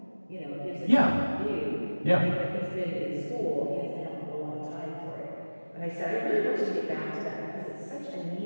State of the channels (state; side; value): inverted; both; correlation -1.00